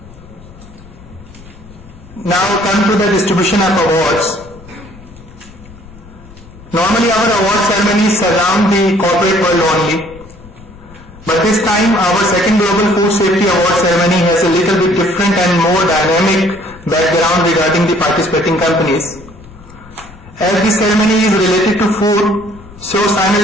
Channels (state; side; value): noise; left; rumble, 21 dB below the sound